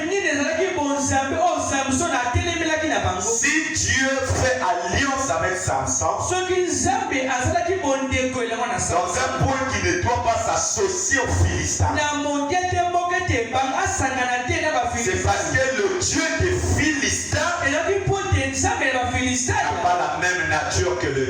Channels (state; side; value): identical; both; correlation 1.00